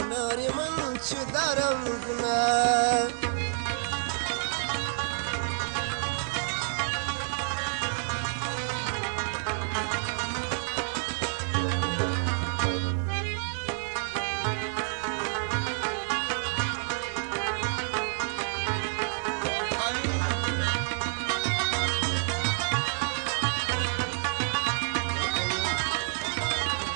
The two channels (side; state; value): left; silent; 59 dB below the other